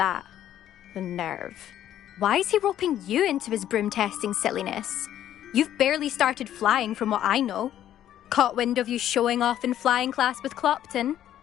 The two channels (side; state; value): right; quieter; 11.5 dB